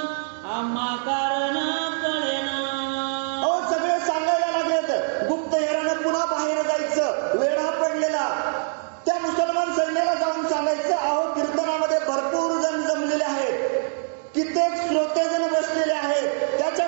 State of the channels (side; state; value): left; silent; digital silence